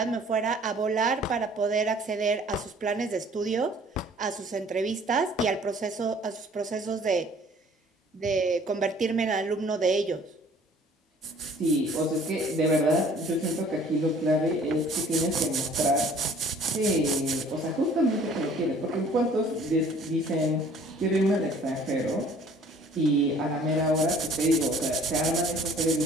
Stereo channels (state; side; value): normal; both; correlation 0.54